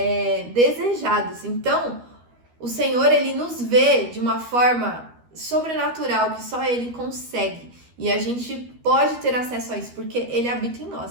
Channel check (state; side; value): late; left; 13 ms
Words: desejados. Então, o Senhor, ele nos vê de uma forma sobrenatural, que só ele consegue. E a gente pode ter acesso a isso, porque ele habita em